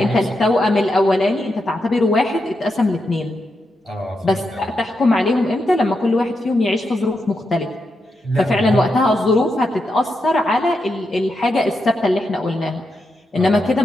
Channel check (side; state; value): both; normal; correlation 0.85